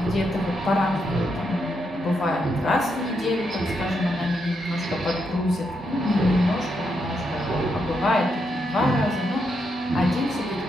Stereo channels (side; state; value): both; normal; correlation 0.81